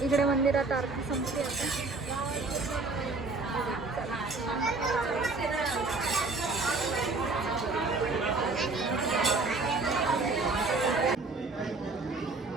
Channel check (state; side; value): quieter; left; 3.7 dB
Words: इकडे मंदिरात आरती संपली आता.